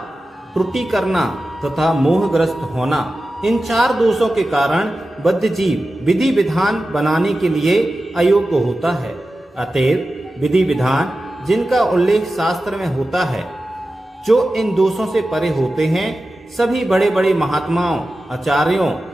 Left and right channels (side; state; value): both; normal; correlation 0.94